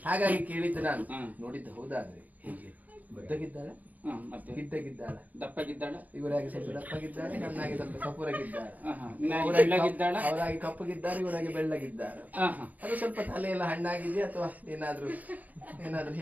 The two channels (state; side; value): late; left; 0.079 ms